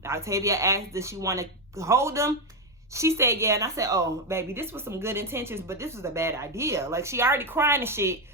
Octavia asked, does she want to hold him? She said, yeah. And I said, oh, baby, this was some good intentions, but this was a bad idea. Like, she already crying and shit.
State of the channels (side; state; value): both; normal; correlation 0.06